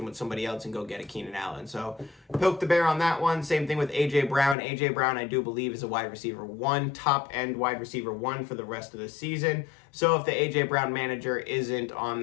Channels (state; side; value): drops out; right; at 4.5 s